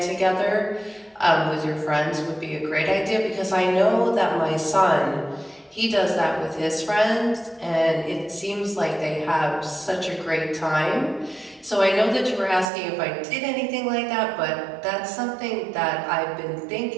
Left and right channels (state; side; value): drops out; left; at 12.7 s